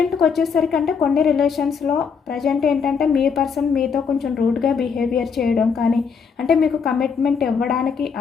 వచ్చేసరికి అంటే కొన్ని రిలేషన్స్లో ప్రజెంట్ ఏంటంటే మీ పర్సన్ మీతో కొంచెం రూడ్గా బిహేవియర్ చేయడం కానీ, అంటే మీకు కమిట్మెంట్ ఇవ్వడానికి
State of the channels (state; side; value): quieter; right; 6.0 dB